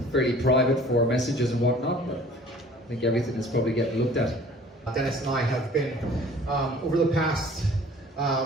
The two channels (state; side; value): normal; both; correlation 0.50